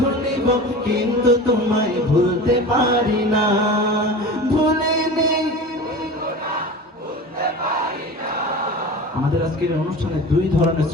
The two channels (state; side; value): normal; both; correlation 0.34